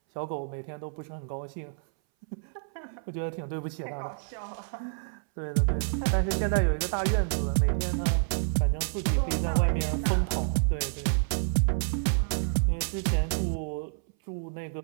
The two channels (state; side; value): silent; left; 59 dB below the other